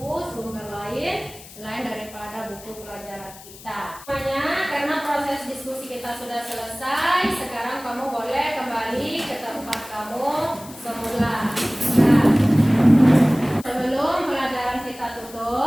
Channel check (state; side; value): noise; left; hiss, 18 dB below the sound